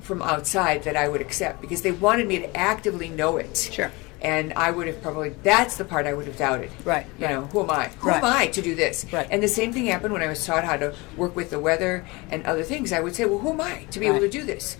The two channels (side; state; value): right; quieter; 24.8 dB